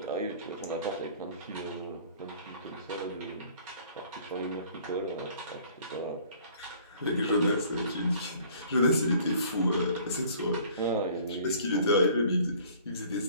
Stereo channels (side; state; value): both; inverted; correlation -0.53